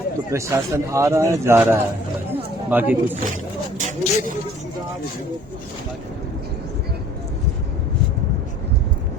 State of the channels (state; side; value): normal; both; correlation 0.54